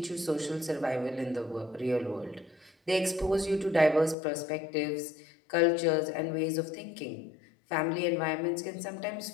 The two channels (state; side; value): drops out; right; at 4.2 s